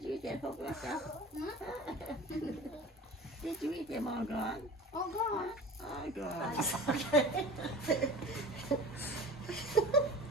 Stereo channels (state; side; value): normal; both; correlation 0.38